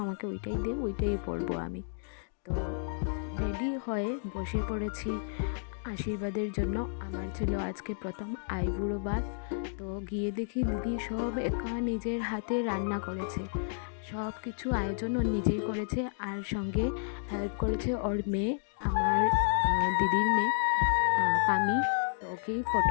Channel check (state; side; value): silent; right; digital silence